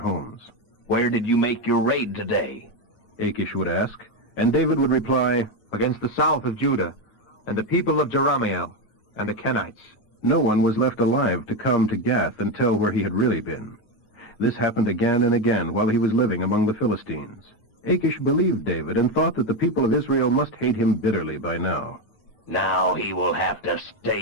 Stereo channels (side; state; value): right; late; 9.4 ms